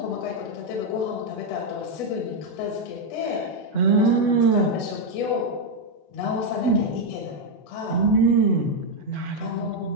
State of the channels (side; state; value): right; late; 8.1 ms